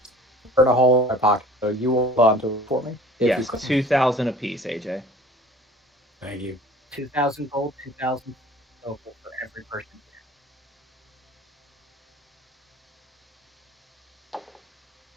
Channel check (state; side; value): normal; both; correlation 0.47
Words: burn a hole in my pocket. So you hold on to it for me if you Yes, could. 2,000 apiece, AJ. Thank you. 2,000 gold, 2,000 silver for every person.